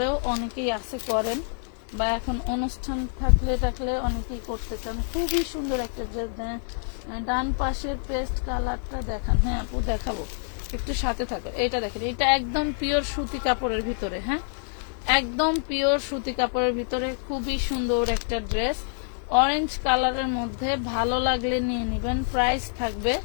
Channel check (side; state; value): right; silent; 60 dB below the other